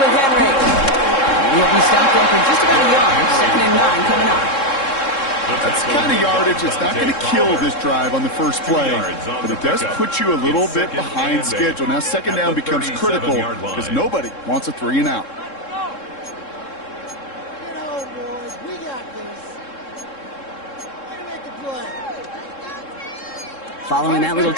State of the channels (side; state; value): right; late; 3.7 ms